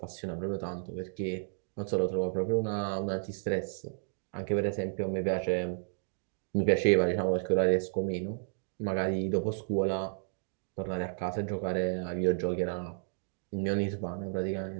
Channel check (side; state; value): left; silent; digital silence